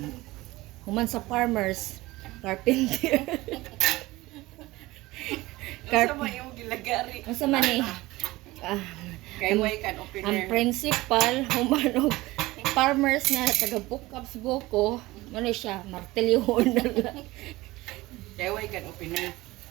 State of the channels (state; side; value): quieter; left; 19.5 dB